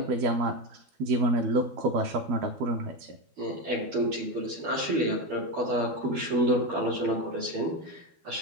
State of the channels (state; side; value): late; left; 12 ms